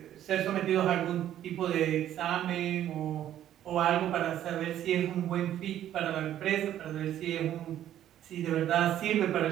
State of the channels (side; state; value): left; quieter; 11.6 dB